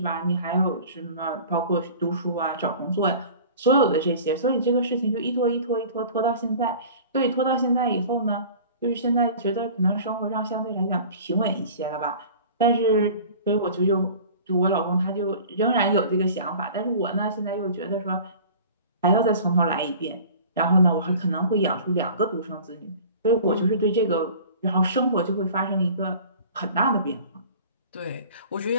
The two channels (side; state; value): both; inverted; correlation -0.43